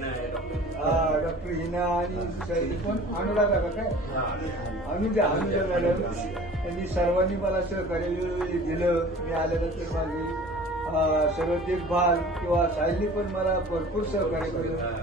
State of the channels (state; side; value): normal; both; correlation 0.45